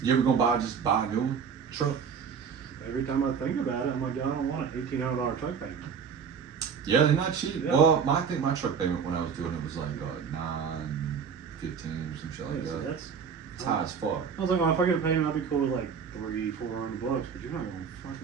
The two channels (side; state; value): left; quieter; 6.5 dB